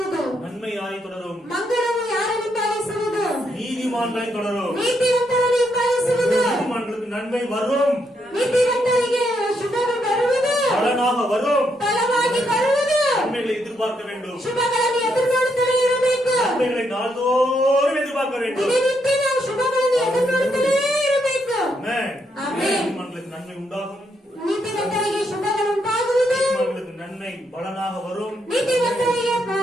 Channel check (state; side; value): normal; both; correlation 0.77